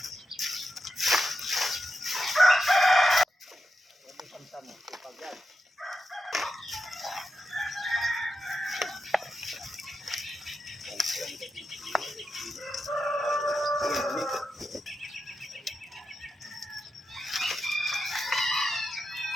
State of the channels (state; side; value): normal; both; correlation 0.88